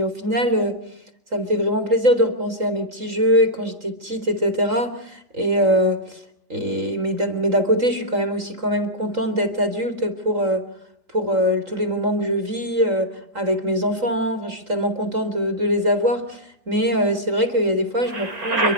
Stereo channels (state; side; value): late; left; 3.8 ms